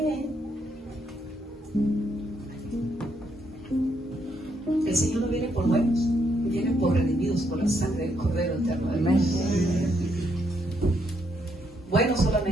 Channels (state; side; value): normal; both; correlation 0.75